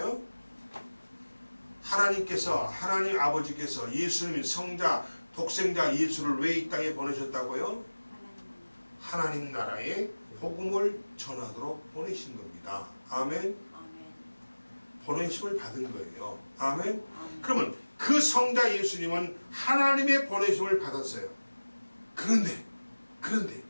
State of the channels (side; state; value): both; inverted; correlation -1.00